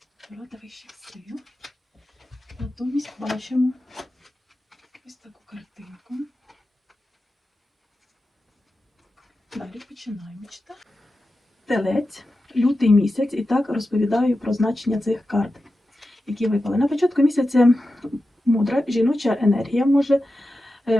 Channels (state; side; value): normal; both; correlation 0.92